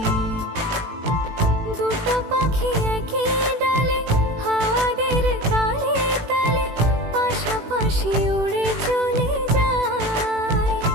দুটো পাখি একই ডালে হাওয়াদের তালে তালে পাশাপাশি উড়ে চলে যায়।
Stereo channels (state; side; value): late; left; 18 ms